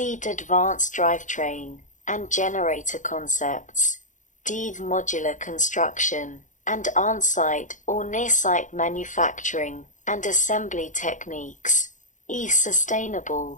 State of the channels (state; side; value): late; right; 0.36 ms